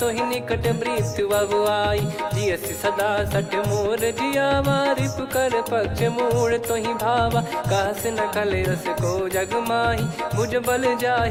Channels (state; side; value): identical; both; correlation 1.00